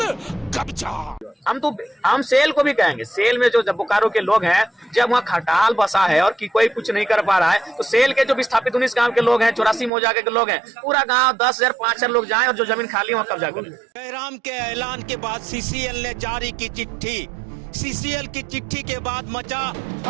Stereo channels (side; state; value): left; drops out; at 9.9 s